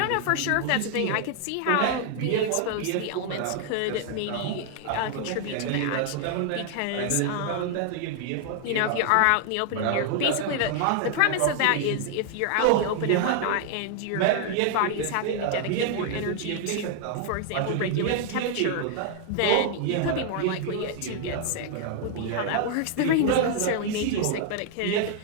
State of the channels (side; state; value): both; different; correlation 0.00